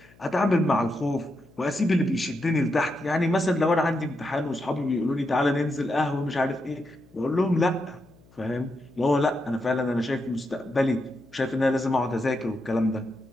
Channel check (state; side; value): noise; left; hum, 28 dB below the sound